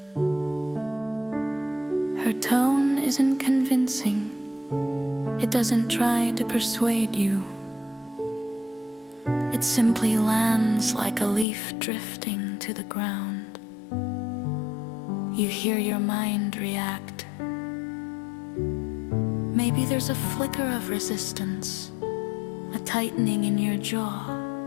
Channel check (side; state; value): right; drops out; at 11.5 s